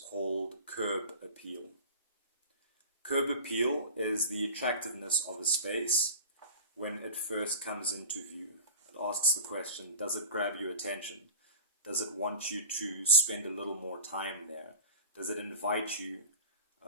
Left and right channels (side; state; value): both; inverted; correlation -0.38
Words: called curb appeal. Curb appeal is the attractiveness of a space when it first comes into view. It asks the question, does it grab your attention? Does it want you to spend a little more time there? Does it invite you